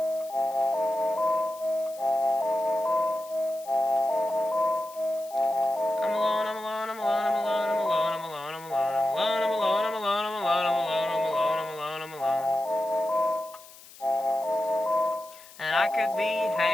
I'm alone, I'm alone, I'm alone, I'm alone, I'm alone, I'm alone, I'm alone, I'm alone, I'm alone.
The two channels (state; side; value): noise; left; hiss, 20 dB below the sound